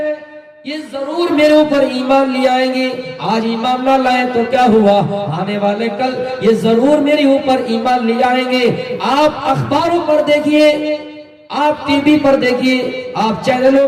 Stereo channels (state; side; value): identical; both; correlation 1.00